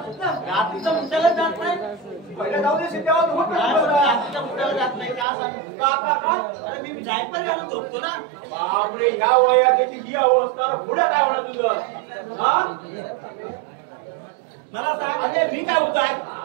मुद्दाला जात नाही पहिला जाऊ दे तेव्हा रात्रीच्या मुद्दाला जात नाही का सांग अरे मी जायपर घालून झोपतो ना बापरे ह्या वयात त्याची ही अवस्था पुढे काय होणार तुझं हा मला सांग अरे मी काय होतो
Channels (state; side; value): drops out; left; at 5.2 s